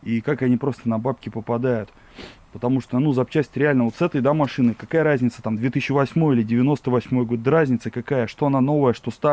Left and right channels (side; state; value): both; identical; correlation 1.00